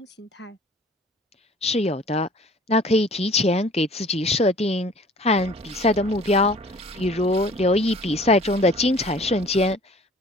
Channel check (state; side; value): normal; both; correlation 0.49